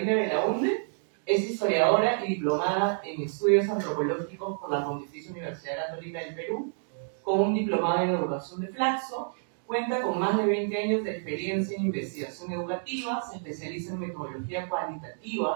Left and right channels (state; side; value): silent; left; digital silence